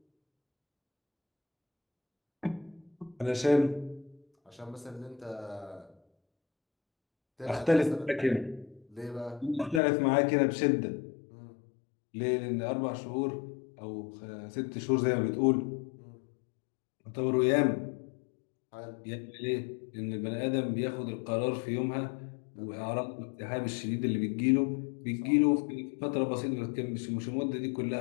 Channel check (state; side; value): drops out; right; at 9.8 s